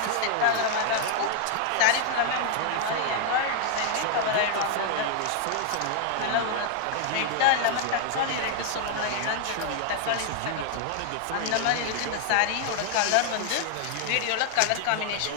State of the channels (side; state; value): both; different; correlation 0.00